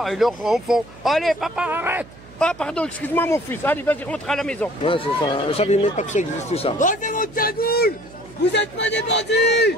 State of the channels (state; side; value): noise; right; hum, 21 dB below the sound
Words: et leur enfant. Allez papa, arrête. Ah pardon, excuse-moi mon fils, allez vas-y rentre à la maison. Ouais c'est ça, je savais même pas que ça existait ça. Enlevez vos cagoules! Vous êtes pas des bandits!